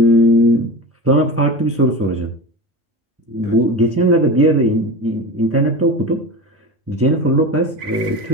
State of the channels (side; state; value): both; normal; correlation 0.28